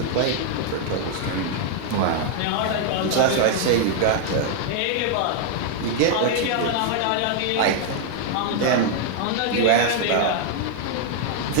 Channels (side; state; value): both; different; correlation 0.00